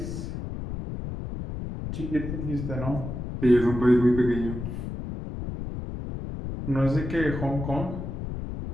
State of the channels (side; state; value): left; noise; rumble, 6 dB below the sound